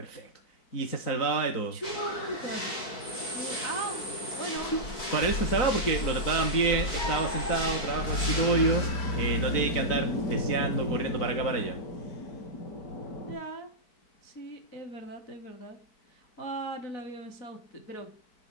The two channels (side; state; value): right; late; 4.5 ms